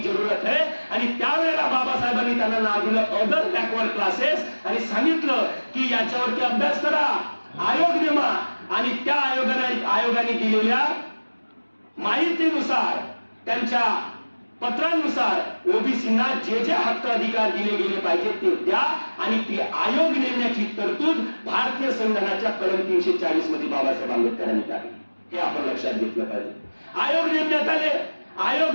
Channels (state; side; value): inverted; both; correlation -1.00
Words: है. आणि त्यावेळेला बाबासाहेबांनी त्यांना नाव दिलं अदर बॅकवर्ड क्लासेस आणि सांगितलं की याच्यावरती अभ्यास करा, आयोग नेमा आणि त्या आयोगाने दिलेल्या माहितीनुसार, त्यांच्या पत्रानुसार ओबीसींना जे जे हक्क अधिकार दिले गेले पाहिजे ते द्या आणि ती आयोग नेमण्याची तरतूद भारतीय संविधानाच्या कलम 340 मध्ये बाबासाहेब आंबेडकरांनी टाकली. हे आपण लक्षात घेतलं पाहिजे. आयोग नेमण्यात आले, आयोग